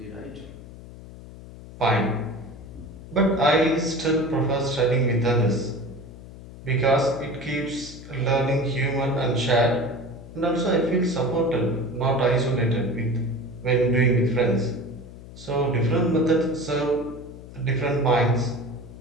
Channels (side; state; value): left; noise; hum, 16 dB below the sound